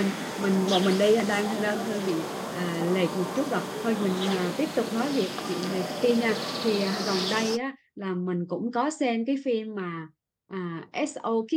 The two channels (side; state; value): both; identical; correlation 1.00